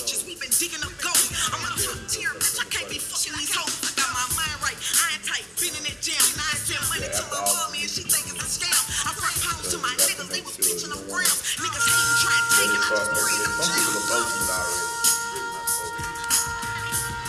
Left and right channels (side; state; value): both; identical; correlation 1.00